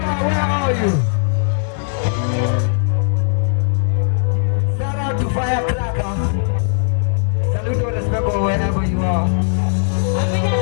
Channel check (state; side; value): silent; right; digital silence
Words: where are you? Shout out to Firecracker. Salute and respect wherever you are.